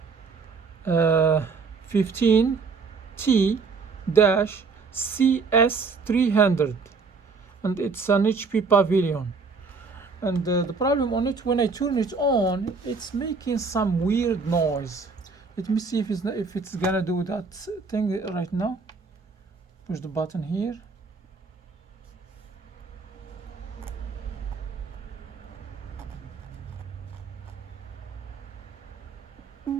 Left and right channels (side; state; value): left; quieter; 4.6 dB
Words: 15T-CS300 and it's an HP Pavilion. And the problem on it, when I turn it on, it's making some weird noise. Let me see if it's gonna do that thing right now. Push the button here.